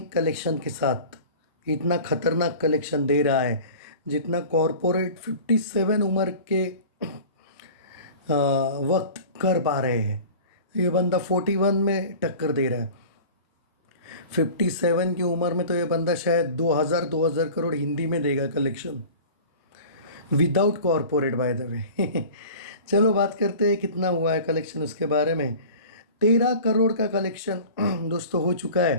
कलेक्शन के साथ इतना खतरनाक कलेक्शन दे रहा है जितना कॉरपोरेट 57 उम्र के वक्त कर पा रहे हैं। ये बंदा 41 में टक्कर दे रहा है। 57 की उम्र में तो ये बंदा शायद 2000 करोड़ हिंदी में देगा collection without corporate by the way. चलो बात करते हैं कितना हुआ है कलेक्शन उसके बारे में। 13 करोड़ का कलेक्शन दोस्तों हो चुका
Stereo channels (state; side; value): inverted; both; correlation -0.40